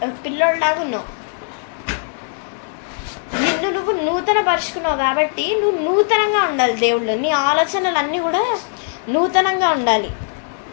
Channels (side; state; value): right; silent; 66 dB below the other